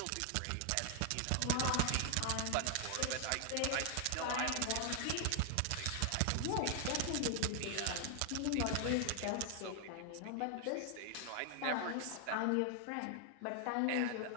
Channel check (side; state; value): both; different; correlation 0.00